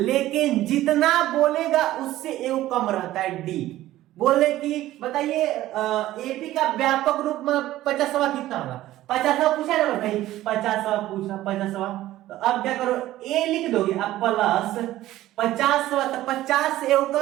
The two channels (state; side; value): quieter; left; 15.0 dB